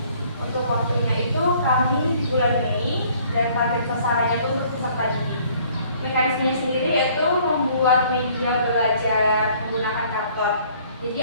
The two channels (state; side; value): inverted; both; correlation -0.58